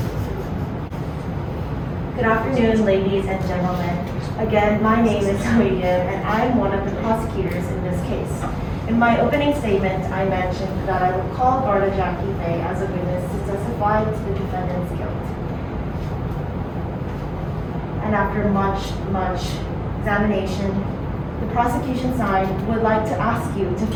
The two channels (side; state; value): both; identical; correlation 1.00